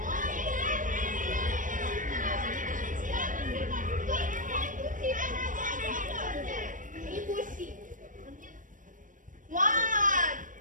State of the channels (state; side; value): late; left; 0.38 ms